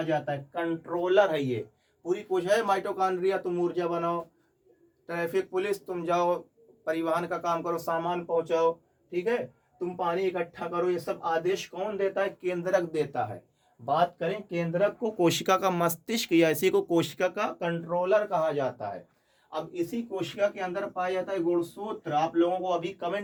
जाता है, कंट्रोलर है ये। पूरी कोशिका है, माइटोकॉन्ड्रिया तुम ऊर्जा बनाओ, ट्रैफिक पुलिस तुम जाओ परिवहन का काम करो, सामान पहुंचाओ, ठीक है, तुम पानी इकट्ठा करो, ये सब आदेश कौन देता है, केंद्रक देता है। बात करें केंद्रक को कोशिका का मस्तिष्क या इसी को कोशिका का कंट्रोलर कहा जाता है। अब इसी कोशिका के अंदर पाया जाता है गुणसूत्र। आप लोगों को अभी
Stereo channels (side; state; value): both; identical; correlation 1.00